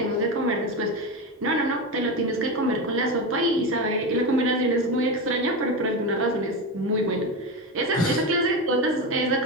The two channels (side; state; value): both; normal; correlation 0.18